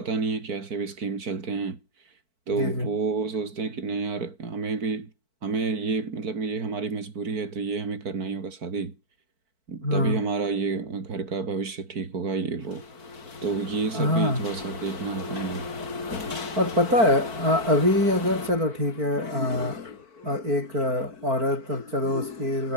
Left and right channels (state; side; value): late; left; 4.5 ms